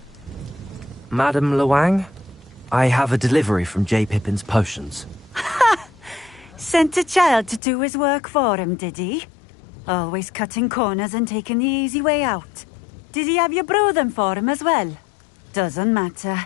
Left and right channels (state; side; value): drops out; right; at 7.6 s